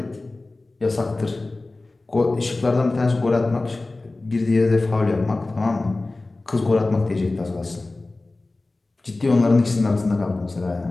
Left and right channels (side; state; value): right; quieter; 3.1 dB